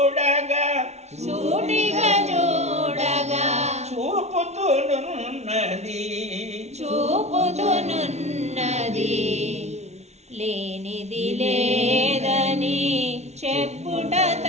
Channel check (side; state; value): left; late; 0.32 ms